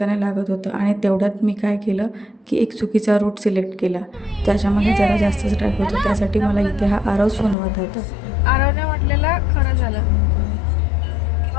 लागत होतं आणि तेवढ्यात मी काय केलं की एक चुकीचा रूट सिलेक्ट केला, ज्याच्यामध्ये जरा जास्तच ट्रॅफिक होतं. त्यासाठी मला इथे हा आरव सुनवत होता. आरवने म्हटलेलं खरं झालं.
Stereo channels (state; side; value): drops out; right; at 7.6 s